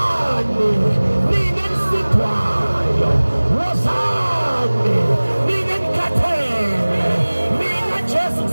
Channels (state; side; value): inverted; both; correlation -1.00